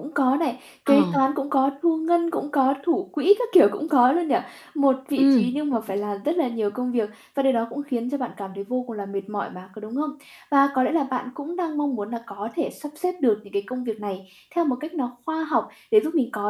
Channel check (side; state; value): both; identical; correlation 1.00